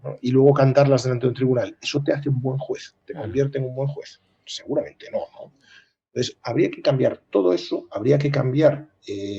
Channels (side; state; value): both; identical; correlation 1.00